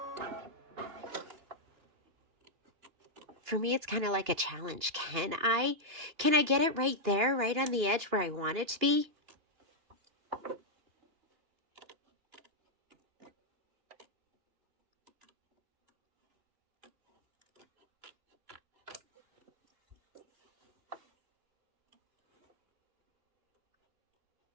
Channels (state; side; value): late; left; 2.9 ms